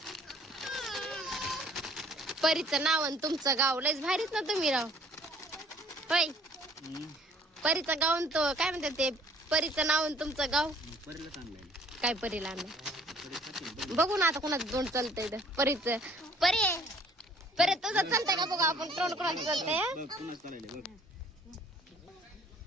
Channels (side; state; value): both; normal; correlation 0.57